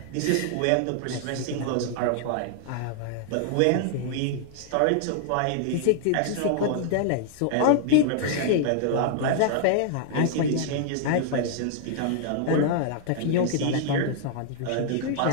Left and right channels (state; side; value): different; both; correlation -0.01